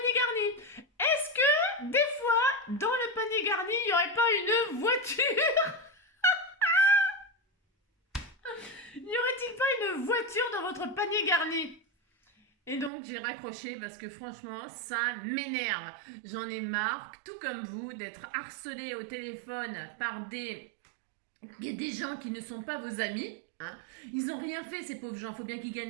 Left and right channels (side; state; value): left; drops out; at 12.9 s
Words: garni. Est-ce que, des fois, dans le panier garni, il n'y aurait pas une voiture? N'y aurait-il pas une voiture dans votre panier garni? Et donc j'ai raccroché parce que franchement, ça m'énerve. J'en ai marre, tout comme vous, d'être harcelé au téléphone par des gens qui ne sont pas vos amis. Hein. Ils n'ont rien fait, ces pauvres gens. Il faut bien qu'ils